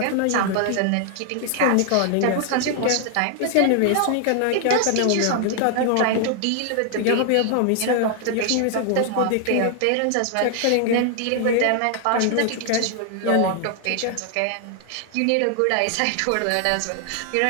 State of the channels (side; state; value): both; different; correlation 0.00